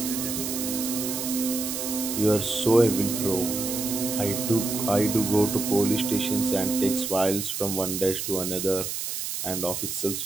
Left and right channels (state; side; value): noise; right; hiss, 4 dB below the sound